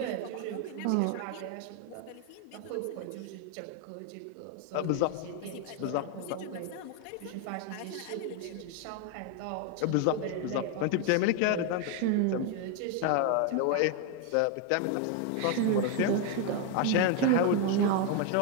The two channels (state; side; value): different; both; correlation 0.01